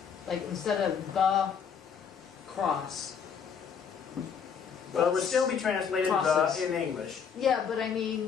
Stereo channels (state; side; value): quieter; right; 6.8 dB